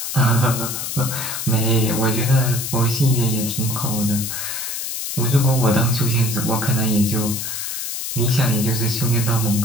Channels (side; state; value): left; noise; hiss, 4 dB below the sound